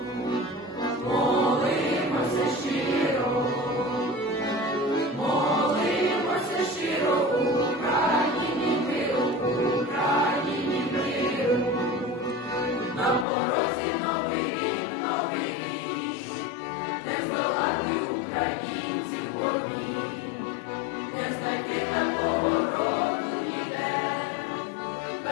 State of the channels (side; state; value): right; drops out; at 13.2 s